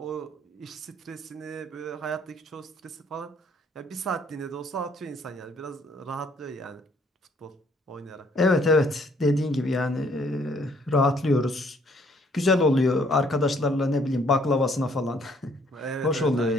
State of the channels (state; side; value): normal; both; correlation 0.64